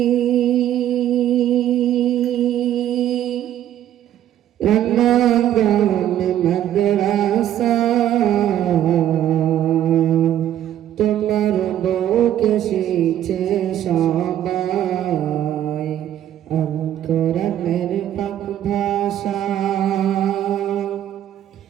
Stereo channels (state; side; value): quieter; left; 11.5 dB